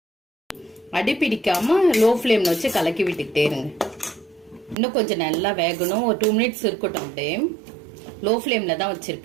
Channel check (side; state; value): left; drops out; at 4.8 s